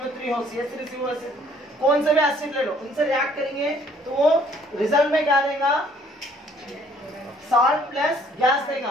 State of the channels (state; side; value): normal; both; correlation 0.60